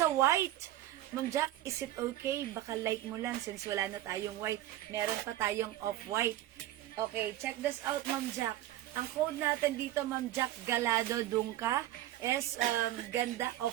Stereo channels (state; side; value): quieter; left; 14.3 dB